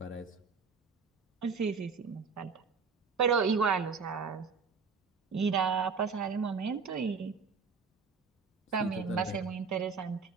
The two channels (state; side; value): quieter; left; 5.3 dB